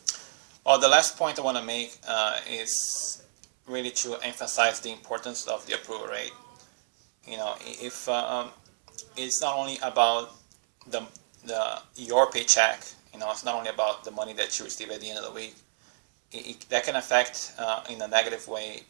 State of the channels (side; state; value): left; silent; 59 dB below the other